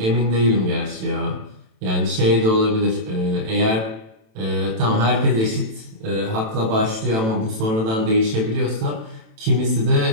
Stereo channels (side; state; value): left; late; 27 ms